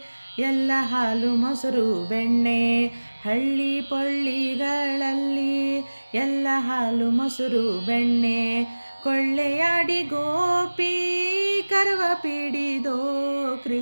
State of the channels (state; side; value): inverted; both; correlation -1.00